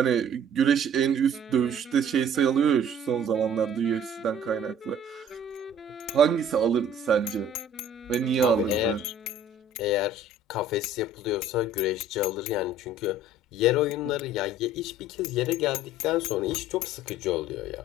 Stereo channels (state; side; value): normal; both; correlation 0.51